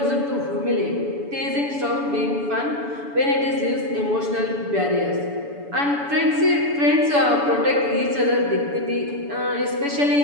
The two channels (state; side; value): late; left; 7.0 ms